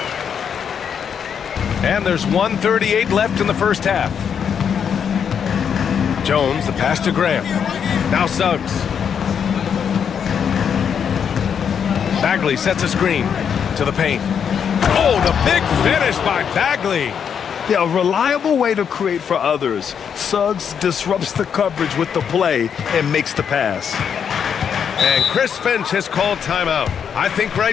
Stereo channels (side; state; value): right; quieter; 7.5 dB